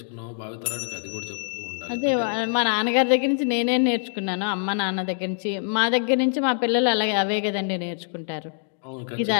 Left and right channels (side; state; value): right; silent; digital silence